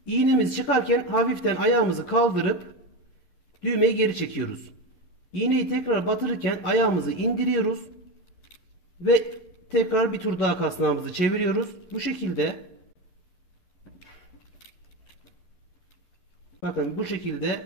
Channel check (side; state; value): right; late; 11 ms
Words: İğnemiz çıkarken hafiften ayağımızı kaldırıp düğmeyi geri çekiyoruz. İğneyi tekrar batırırken ayağımızı indiriyoruz. Ve tekrar bir tur daha kasnağımızı çeviriyoruz. Bu şekilde bakın bu